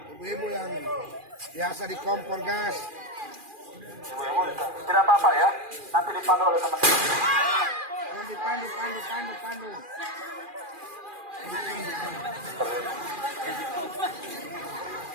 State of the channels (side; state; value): left; late; 2.4 ms